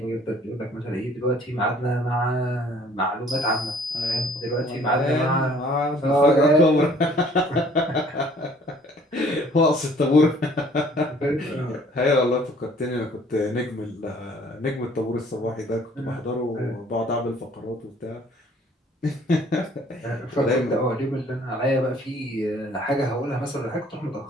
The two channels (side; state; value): both; normal; correlation 0.56